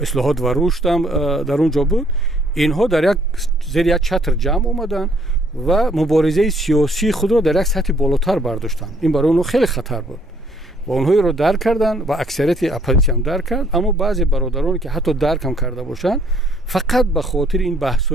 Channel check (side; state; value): both; normal; correlation 0.64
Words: اصلاحات و رشد هم در اونجا بود. اینها در یک زیر یک چتر جمع آمدن و مبارزه سیاسی خود را در یک سطح بالاتر برداشتن. این برای اونها خیلی خطر بود و اونها رو درک کردن و اکثریت اپوزیسیون هم درک کرد. اما بعضی برادرانی که حتی درک هم کرده باشن، فقط به خاطر این